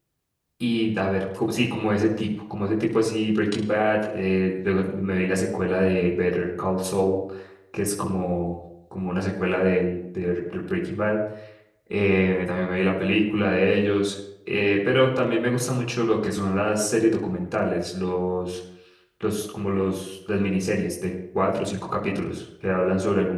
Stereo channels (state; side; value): identical; both; correlation 1.00